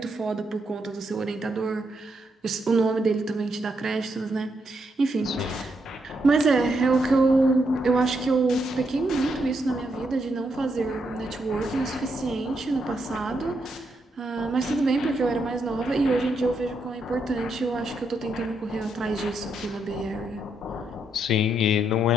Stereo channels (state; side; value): normal; both; correlation 0.79